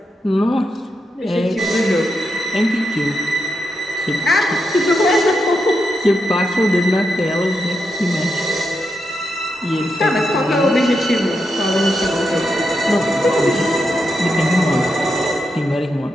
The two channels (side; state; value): both; normal; correlation 0.85